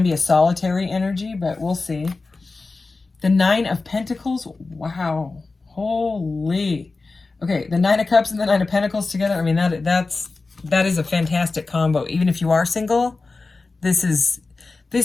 be a solitary energy, but we'll see. The 9 of Pentacles, wow, holy. Okay, the 9 of Cups and the 9 of Pentacles together, I mean, that is a fantastic combo. Even if you are single, this is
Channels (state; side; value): quieter; right; 3.7 dB